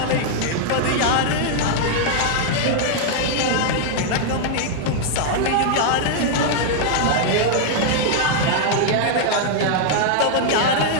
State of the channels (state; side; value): different; both; correlation -0.01